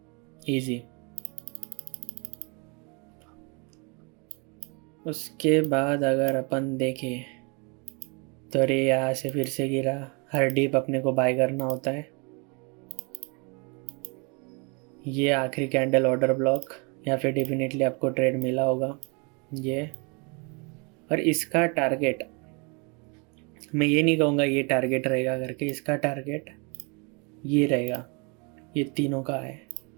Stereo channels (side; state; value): left; quieter; 32.3 dB